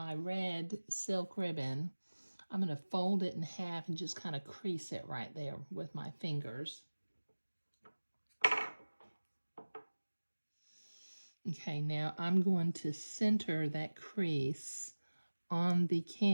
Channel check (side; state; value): both; inverted; correlation -1.00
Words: red silk ribbon. I'm going to fold it in half and just kind of crease it right there with my fingers. Okay, now I'm going to center that crease on the